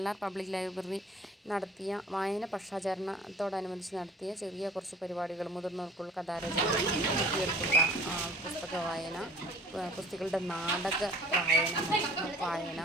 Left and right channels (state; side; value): normal; both; correlation 0.50